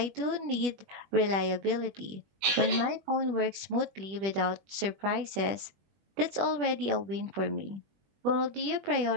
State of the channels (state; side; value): late; left; 21 ms